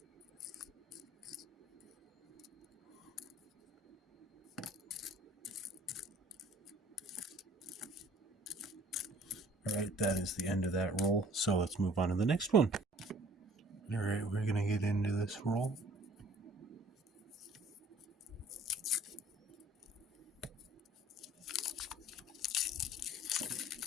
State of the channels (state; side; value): normal; both; correlation 0.54